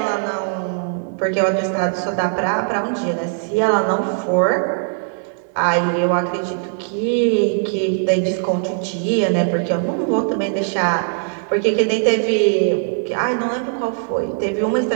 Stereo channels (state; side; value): silent; left; digital silence